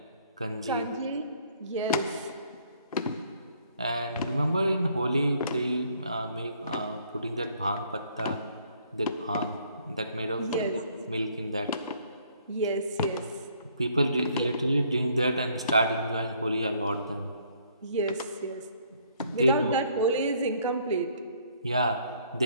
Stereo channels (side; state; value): both; inverted; correlation -0.64